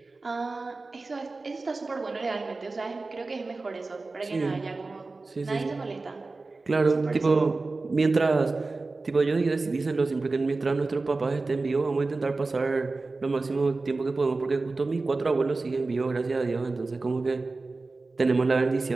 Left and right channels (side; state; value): left; quieter; 3.6 dB